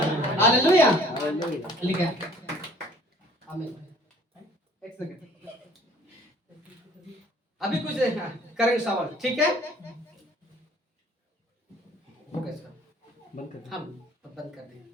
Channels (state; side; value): normal; both; correlation 0.54